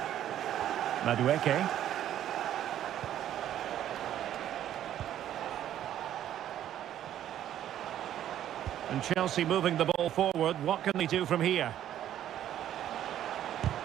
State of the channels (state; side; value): quieter; left; 11.4 dB